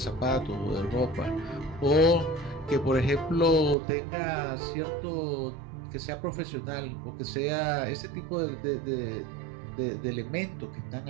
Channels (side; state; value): left; drops out; at 3.8 s